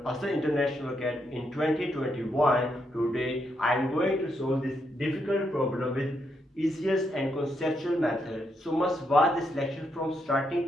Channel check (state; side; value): normal; both; correlation 0.79